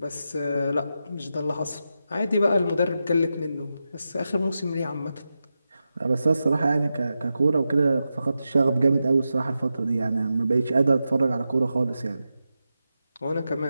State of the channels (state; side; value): inverted; both; correlation -0.90